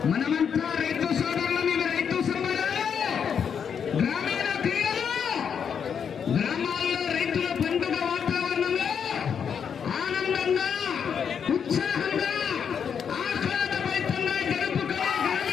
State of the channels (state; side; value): quieter; right; 7.3 dB